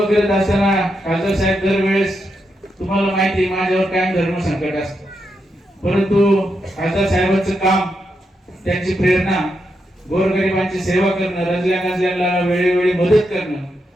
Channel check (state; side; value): normal; both; correlation 0.84